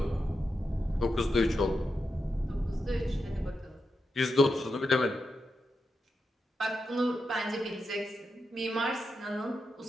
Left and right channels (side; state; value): both; normal; correlation 0.87